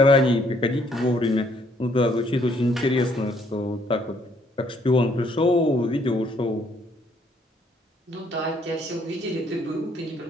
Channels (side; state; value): both; normal; correlation 0.67